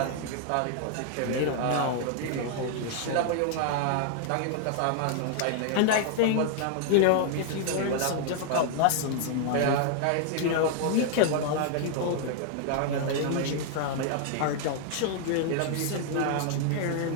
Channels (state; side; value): different; both; correlation 0.00